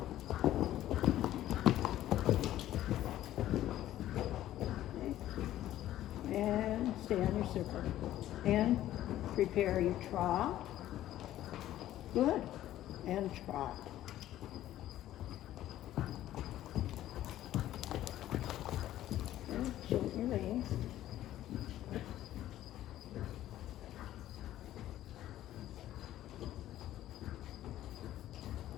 Okay. And stay on your circle. And prepare your trot. Good. And trot. And shorten your reins.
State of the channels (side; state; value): right; quieter; 13.3 dB